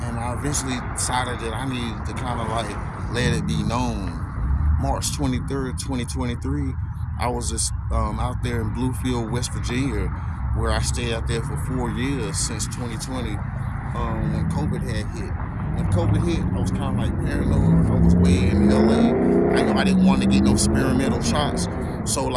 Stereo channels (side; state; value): both; identical; correlation 1.00